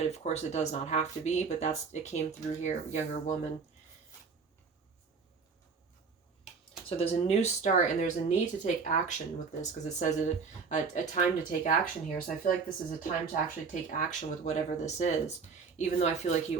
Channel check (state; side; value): quieter; left; 5.1 dB